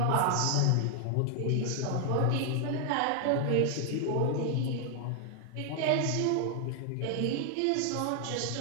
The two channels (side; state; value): both; different; correlation 0.00